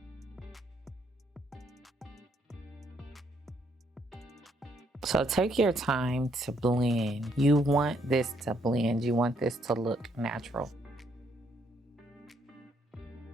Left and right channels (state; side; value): normal; both; correlation 0.71